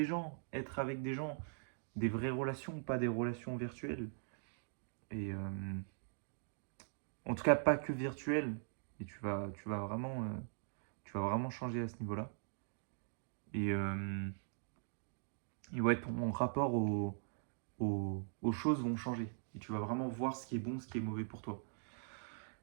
gens, être avec des gens, des vraies relations, pas des relations virtuelles. Et en tout cas, pas que virtuelles. Et tu vas vraiment changer à ce niveau-là. Et, euh, et ouais, ton rapport aux choses vont changer. Et tu vas vraiment voir ce qui est bon, ce qui est mauvais pour toi.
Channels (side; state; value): left; silent; digital silence